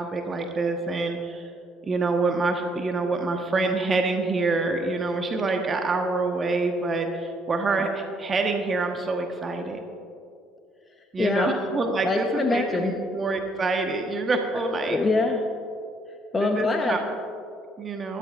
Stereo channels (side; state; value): both; normal; correlation 0.69